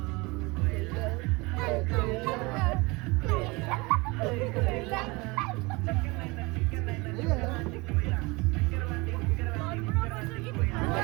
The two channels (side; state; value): left; quieter; 25.1 dB